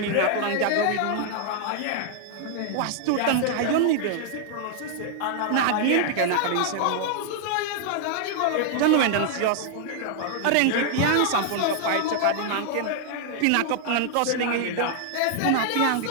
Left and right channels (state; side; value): different; both; correlation 0.00